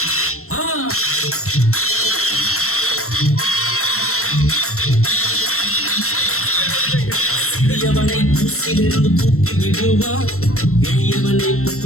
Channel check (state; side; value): late; right; 0.63 ms